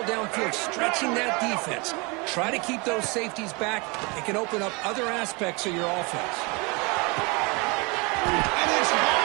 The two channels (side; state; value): left; quieter; 28.7 dB